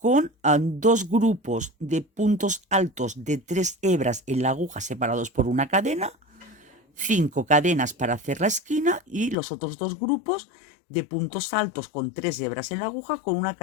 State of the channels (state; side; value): drops out; right; at 9.3 s